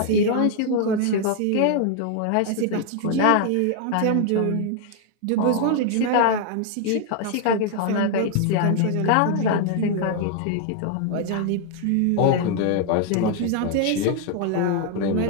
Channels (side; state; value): both; different; correlation 0.00